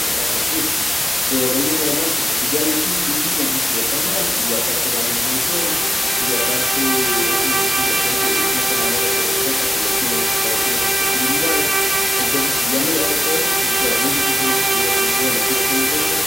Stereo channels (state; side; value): normal; both; correlation 0.91